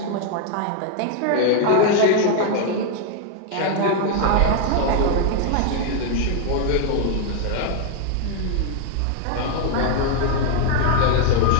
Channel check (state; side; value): different; both; correlation 0.00